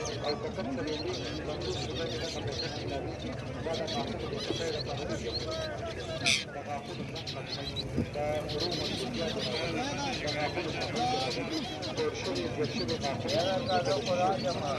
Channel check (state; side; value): identical; both; correlation 1.00